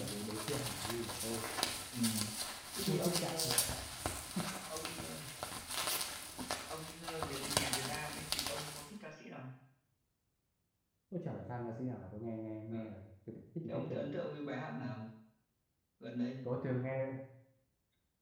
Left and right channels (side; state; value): both; identical; correlation 1.00